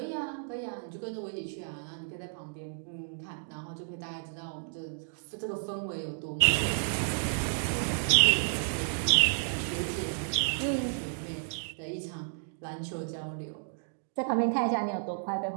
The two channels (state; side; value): silent; left; digital silence